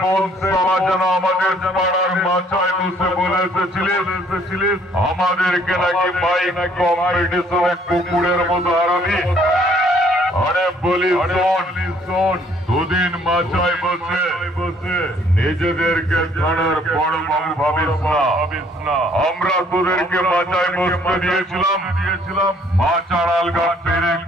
কোন সভা যেন আমাদের পাড়ার মাচায় বসে বলে এসেছিলিস আমাদেরকে নাকি বাইক কম্পিটিশনে কুকুরের মতো হারাবি। আরে বলি শোন, দুদিন মাচায় বসে নিজেদেরকে থানার বড় বাবু ভাবিস না। আমরা তোদেরকে মাচায় বসতে দিয়েছিলাম মাচার আলগা পেরেক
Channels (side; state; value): both; normal; correlation 0.62